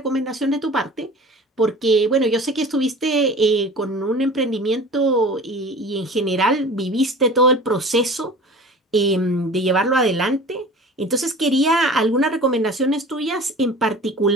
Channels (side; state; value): both; normal; correlation 0.41